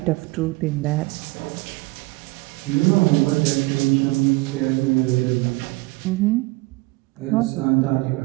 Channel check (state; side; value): quieter; left; 22.6 dB